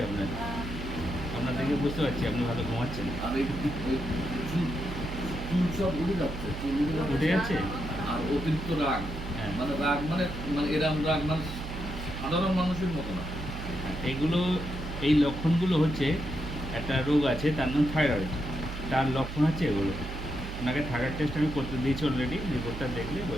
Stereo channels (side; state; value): right; noise; hum, 8 dB below the sound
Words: আপনার। আহ, আপনার দেখে বুঝতে পারছি আপনি ভালো ঘুমাচ্ছেন। আর এই চুল চুল সব উঠে যাচ্ছে, চুল উঠে যাচ্ছে। উঠে যাচ্ছে? আর অতিরিক্ত রাগ, হ্যাঁ। মানে রাগ মানে মানে এরম রাগ মানে সাধারণ মানুষের মতো না। এগুলো এই লক্ষণগুলো হচ্ছে একটা রোগ আছে তার নাম থাইরয়েড, তার লক্ষণ হচ্ছে এগুলো। আপনাকে থাইরয়েড টেস্ট আমি করতে দিয়েছি অলরেডি, রিপোর্টটা দেখলে